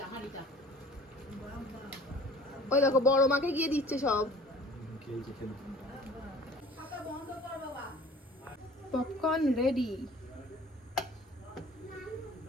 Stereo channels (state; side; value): normal; both; correlation 0.48